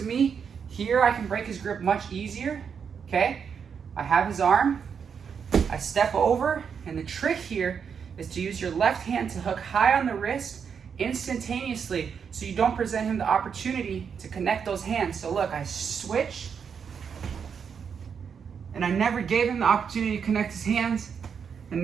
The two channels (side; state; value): left; quieter; 6.8 dB